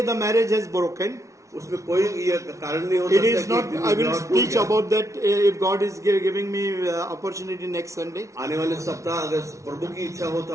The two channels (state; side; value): late; left; 0.14 ms